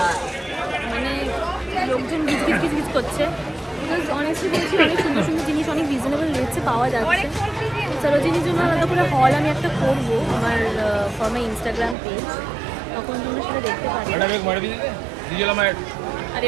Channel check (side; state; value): left; drops out; at 12.0 s